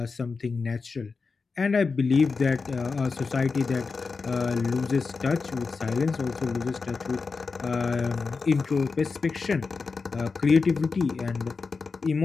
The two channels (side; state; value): right; quieter; 4.6 dB